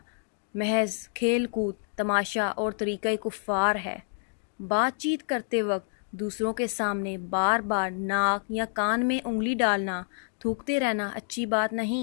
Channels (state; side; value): silent; right; digital silence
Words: محض کھیل کود، تماشا اور طریقہ کفار ہے۔ بات چیت کرتے وقت دوسروں کے سامنے بار بار ناک یا کان میں انگلی ڈالنا، تھوکتے رہنا اچھی بات